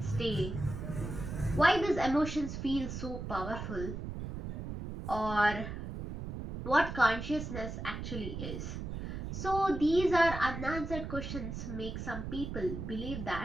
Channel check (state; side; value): noise; right; rumble, 6 dB below the sound